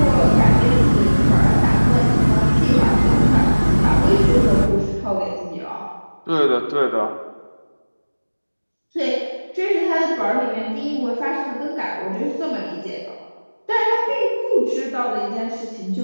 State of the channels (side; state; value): both; inverted; correlation -1.00